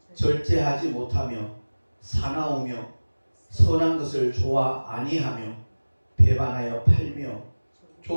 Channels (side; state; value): both; inverted; correlation -1.00